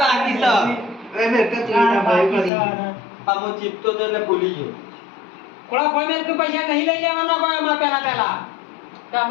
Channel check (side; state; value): right; drops out; at 2.5 s